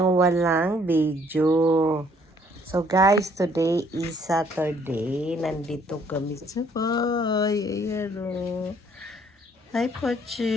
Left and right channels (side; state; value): both; normal; correlation 0.63